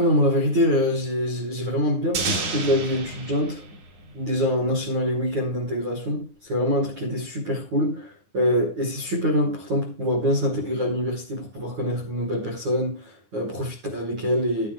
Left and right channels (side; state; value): left; late; 9.7 ms